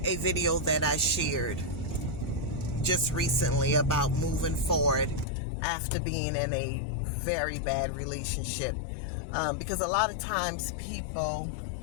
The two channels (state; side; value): drops out; right; at 5.2 s